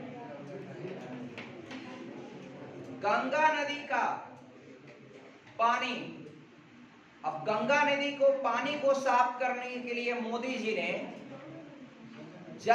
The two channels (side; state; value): both; identical; correlation 1.00